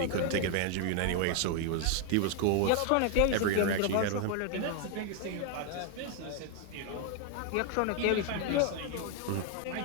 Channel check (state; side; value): different; both; correlation 0.00